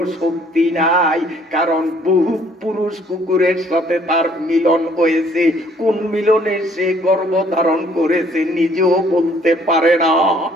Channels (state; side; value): normal; both; correlation 0.61